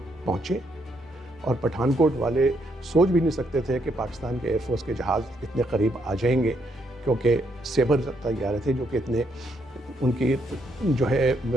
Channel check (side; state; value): both; normal; correlation 0.75